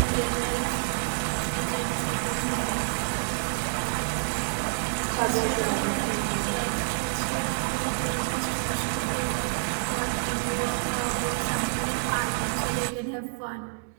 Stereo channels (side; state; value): left; silent; digital silence